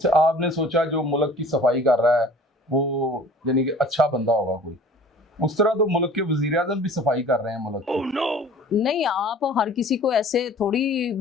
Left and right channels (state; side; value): normal; both; correlation 0.47